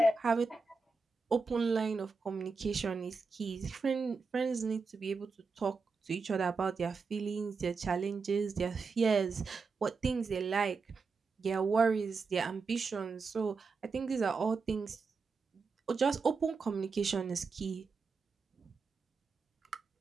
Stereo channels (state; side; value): quieter; left; 4.6 dB